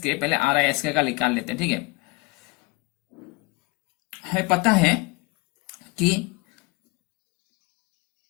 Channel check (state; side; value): quieter; right; 24.8 dB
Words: पहले RISK का निकाल लेते हैं, ठीक है। हमें पता है कि